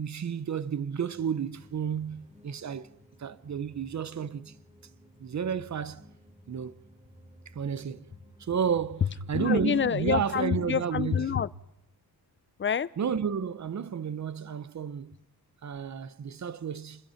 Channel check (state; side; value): normal; both; correlation 0.11